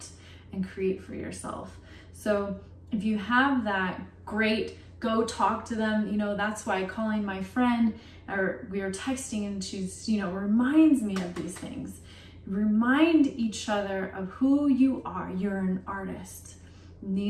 and create for yourself. So if you have that, great. Go talk to them. You know, that's why calling my friend, or we are texting, and she's, you know, reminds me of these things. Remind each other of who you are. You're an artist. And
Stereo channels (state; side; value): identical; both; correlation 1.00